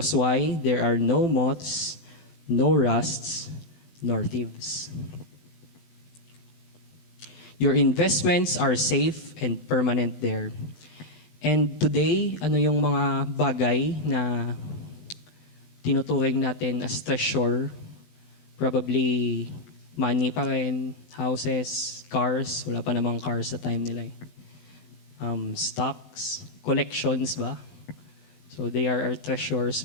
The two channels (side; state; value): right; late; 20 ms